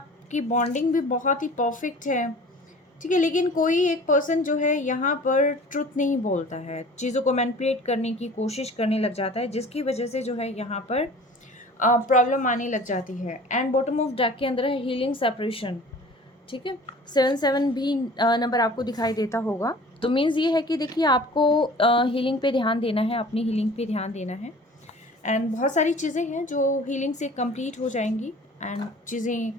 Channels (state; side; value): normal; both; correlation 0.45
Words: बॉन्डिंग भी बहुत ही परफ़ेक्ट है, ठीक है? लेकिन कोई एक पर्सन जो है यहाँ पर ट्रुथ नहीं बोलता है, चीज़ों को मैनिपुलेट करने की कोशिश करने लग जाता है, जिसकी वजह से जो है यहाँ पर प्रॉब्लम आने लग जाती है। एंड बॉटम ऑफ डेक के अंदर है हीलिंग सेपरेशन, ठीक है? 7-7 भी नंबर आपको दिखाई देता होगा। तो मीन्स ये है कि देखिए आपको हीलिंग पे ध्यान देना है, अपनी हीलिंग पे ध्यान देना है एंड बहुत सारी चीज़ें हैं जो हीलिंग से कंप्लीट हो जाएँगी एंड चीज़ें